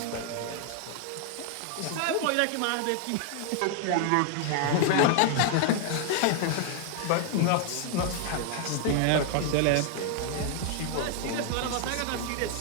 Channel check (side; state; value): both; different; correlation 0.00